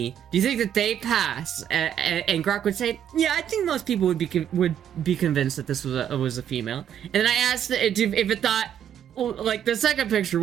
do you think that they pass?" And Grok would say, "Yeah, I think most people would be convinced that this was a female." And then I asked it if it thought, like, the second picture,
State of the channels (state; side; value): quieter; left; 9.6 dB